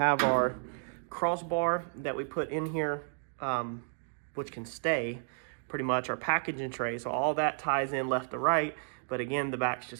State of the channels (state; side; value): silent; left; digital silence